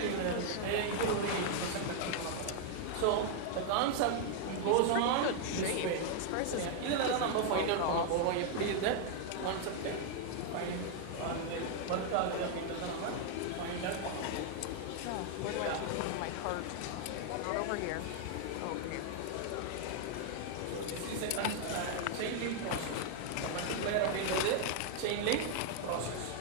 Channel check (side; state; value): both; different; correlation 0.00